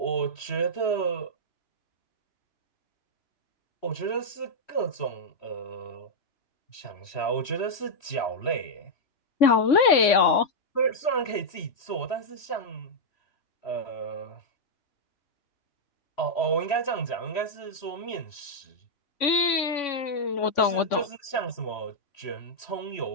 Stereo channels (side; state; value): right; late; 3.5 ms